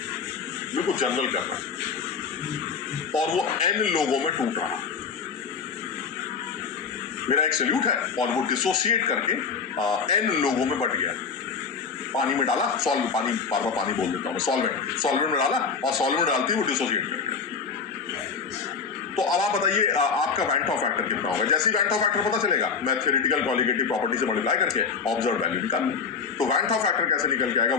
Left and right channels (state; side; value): quieter; right; 5.7 dB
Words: बिल्कुल जनरल करना है, और वो N लोगों में टूट रहा है। मेरा एक सल्यूट है और वो डिसोसिएट करके N लोगों में बट गया। पानी में डाला, पानी, बार बार पानी बोल देता हूं मैं, सॉल्वेंट में डाला, और सॉल्वेंट डालती वो डिसोसिएट कर गया। तो अब आप बताइए आपका वैंट ऑफ फैक्टर कितना होगा। जैसे ही वैंट ऑफ फैक्टर पता चलेगा, मैं थ्योरेटिकल कॉलिगेटिव प्रॉपर्टी से मल्टीप्लाई करके ऑब्जर्व वैल्यू निकाल लूं। तो वैंट ऑफ फैक्टर कैसे निकल के आएगा